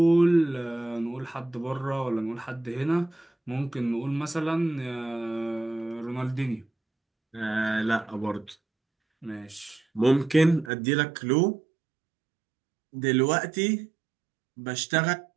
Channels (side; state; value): left; drops out; at 10.7 s